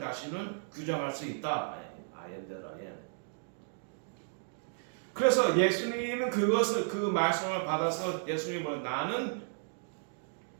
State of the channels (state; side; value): silent; left; digital silence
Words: 규정할 수 있다. I am that I am. 그래서 예수님은 그 말씀을 받아서 예수님은 나는